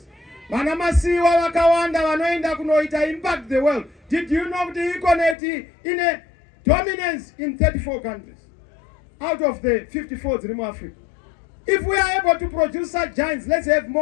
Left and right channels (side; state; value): right; drops out; at 5.4 s